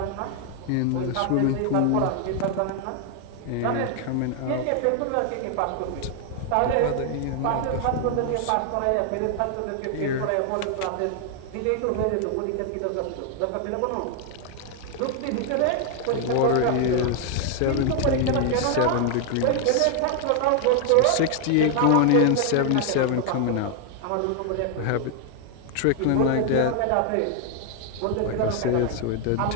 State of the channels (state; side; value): different; both; correlation 0.00